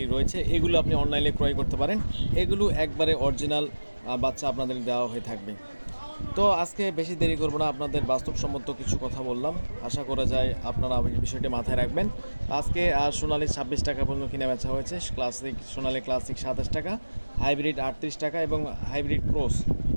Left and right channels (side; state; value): both; inverted; correlation -1.00